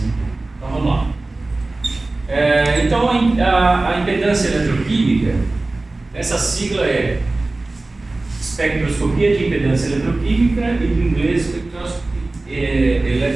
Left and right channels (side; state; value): left; quieter; 3.1 dB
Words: Então vamos lá. Então a impedância eletroquímica, essa sigla é espectroscopia de impedância eletroquímica e em inglês